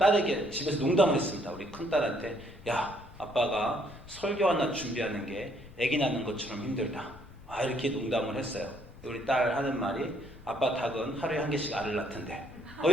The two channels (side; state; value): left; noise; rumble, 20 dB below the sound